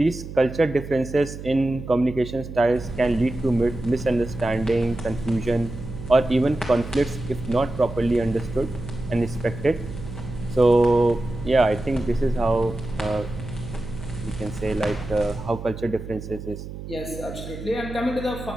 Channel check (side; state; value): right; noise; hum, 10 dB below the sound